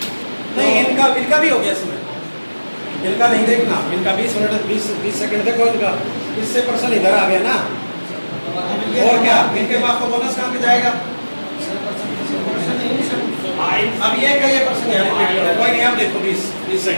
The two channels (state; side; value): inverted; both; correlation -1.00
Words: नहीं, इनका भी हो गया इसमें। इनका नहीं देखना, इनका 20 मिनट 20 सेकंड देखो इनका, इससे प्रश्न इधर आ गया ना। और क्या इनके पास तो बोनस कहाँ पे जाएगा? अब ये का ये प्रश्न है, कोई नहीं, आप देखो 20